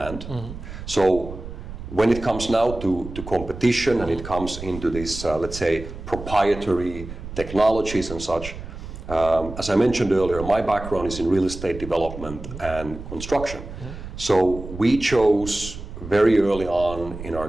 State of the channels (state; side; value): noise; right; rumble, 11 dB below the sound